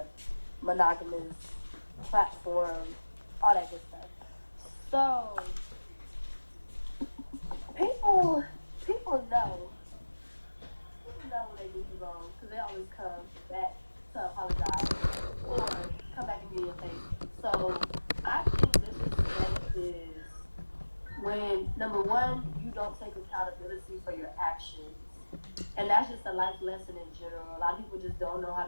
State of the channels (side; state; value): both; inverted; correlation -1.00